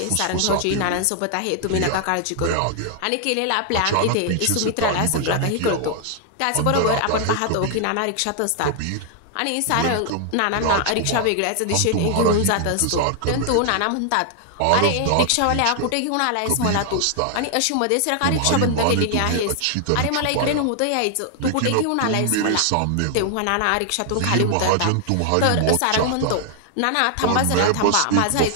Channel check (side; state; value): both; different; correlation 0.00